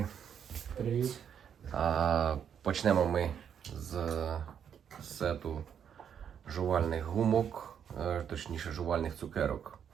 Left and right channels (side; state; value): left; quieter; 8.3 dB